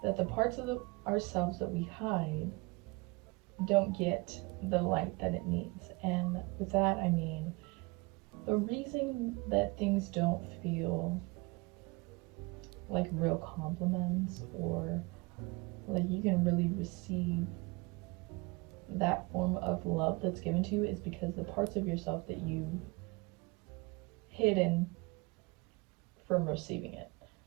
that the parts of ourselves that we hide don't get the light that it needs. And with that, I mean the reason that things don't feel like real compliments or like you can really receive that form of love that's given to you is because the parts of yourself that you've hidden from receiving it.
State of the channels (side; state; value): left; quieter; 26.3 dB